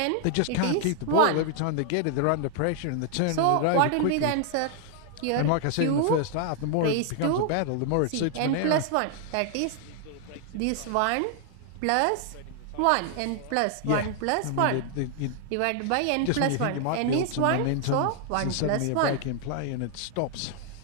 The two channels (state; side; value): different; both; correlation 0.00